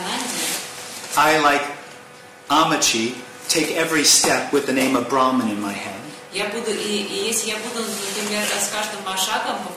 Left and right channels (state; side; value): identical; both; correlation 1.00